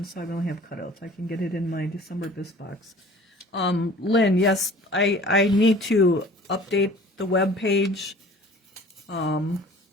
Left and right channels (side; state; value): both; normal; correlation 0.47